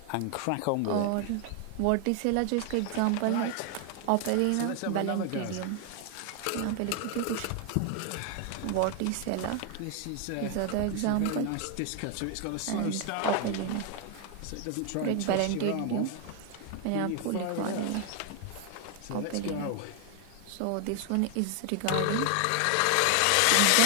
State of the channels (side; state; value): both; different; correlation 0.00